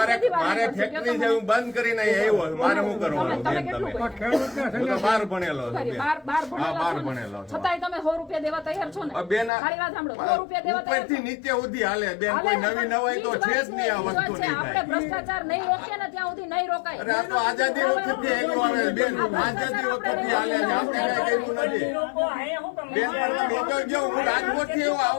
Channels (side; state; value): right; drops out; at 9.5 s